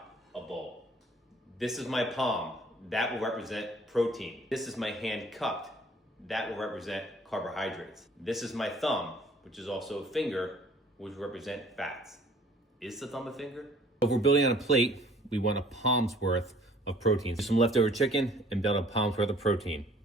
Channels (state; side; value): normal; both; correlation 0.55